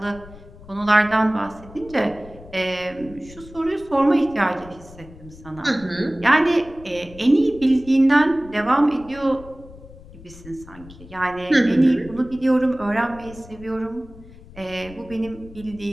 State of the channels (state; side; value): noise; left; rumble, 19 dB below the sound